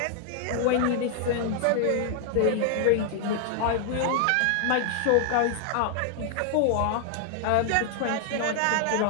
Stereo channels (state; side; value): different; both; correlation 0.00